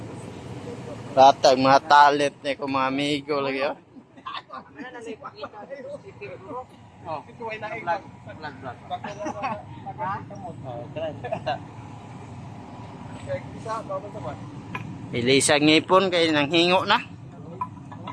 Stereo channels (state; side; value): identical; both; correlation 1.00